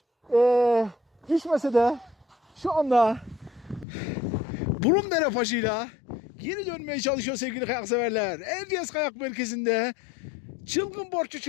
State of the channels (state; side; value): drops out; right; at 3.9 s